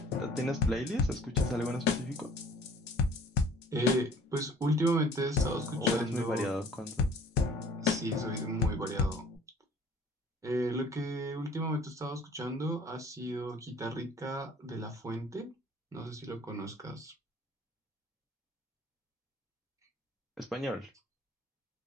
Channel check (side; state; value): both; normal; correlation 0.51